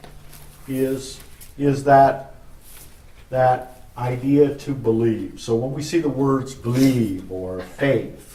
is that idea to believe. So when we see the words believe or faith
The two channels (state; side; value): identical; both; correlation 1.00